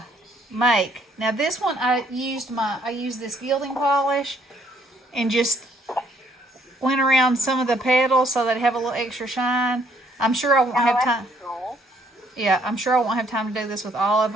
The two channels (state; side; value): normal; both; correlation 0.66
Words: make. Now this one I used this gilding polish and just went around some of the petals so they'd have a little extra shine. I'm sure I won't Oh, have that's time. cool. Yeah, I'm sure I won't have time to do this with all of